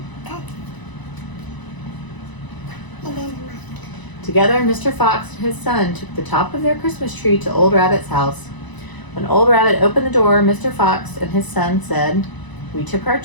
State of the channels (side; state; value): right; late; 1.0 ms